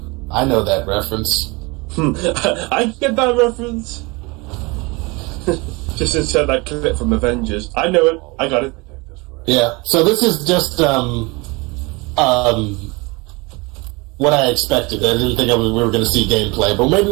I know that reference. I get that reference. Just insert that clip from Avengers. I know it. I got it. Yeah. So this is just what I expected. I didn't think we were going to see gameplay, but maybe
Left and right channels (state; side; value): quieter; left; 26.1 dB